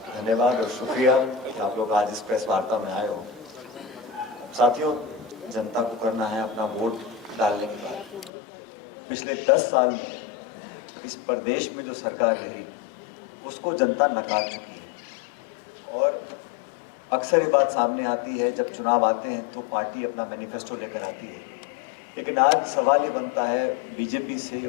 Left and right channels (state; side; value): drops out; right; at 8.3 s